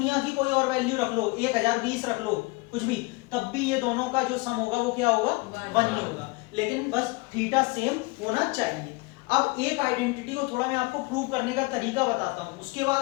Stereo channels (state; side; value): quieter; right; 25.4 dB